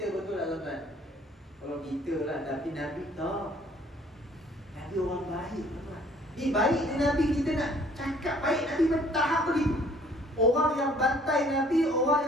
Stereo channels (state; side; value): normal; both; correlation 0.58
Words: betul tak tuan-tuan? Kalau kita lah, tapi Nabi tak. Nabi orang baik tuan-tuan. Ni baik ni Nabi, kita nak cakap baik Nabi bertahap begitu. Orang yang bantai Nabi, orang